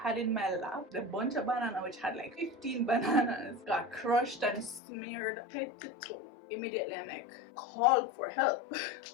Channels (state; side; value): drops out; right; at 4.8 s